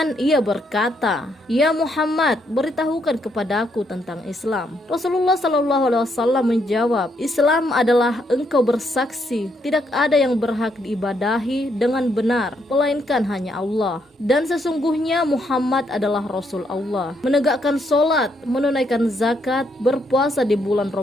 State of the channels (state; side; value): normal; both; correlation 0.75